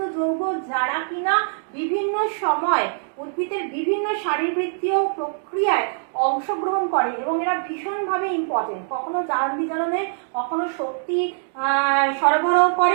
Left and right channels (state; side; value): silent; left; digital silence